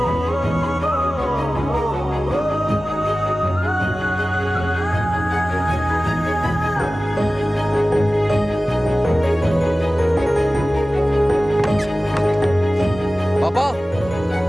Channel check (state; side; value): normal; both; correlation 0.96